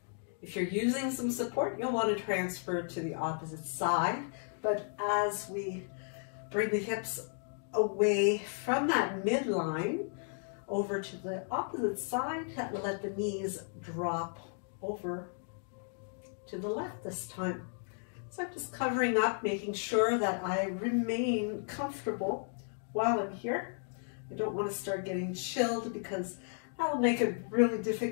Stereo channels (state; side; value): silent; right; 55 dB below the other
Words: if you're using some support, you'll want to transfer to the opposite side. But as we bring the hips away from that midline over to the opposite side, let the knees drop over to the left this time. So I'm just covering up, making sure that I remain comfortable while I'm here. I don't want to start getting chilled, because that'll make it really